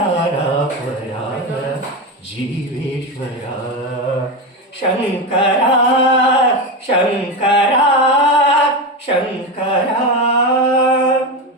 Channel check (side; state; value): both; normal; correlation 0.17